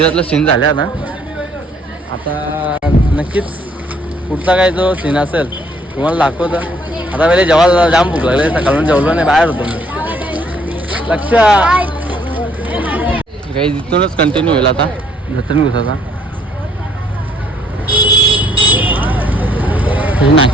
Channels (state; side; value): normal; both; correlation 0.65